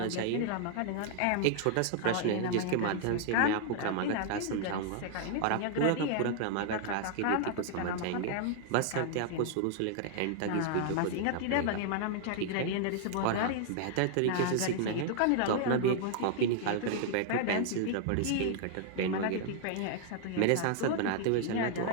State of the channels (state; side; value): different; both; correlation 0.00